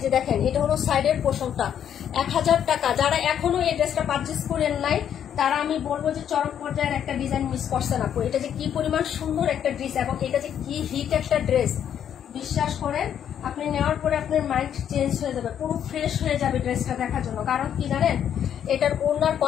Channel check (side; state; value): right; quieter; 9.3 dB